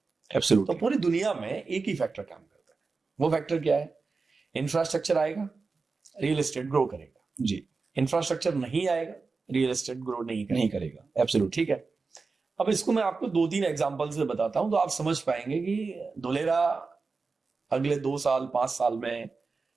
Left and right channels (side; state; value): left; quieter; 4.3 dB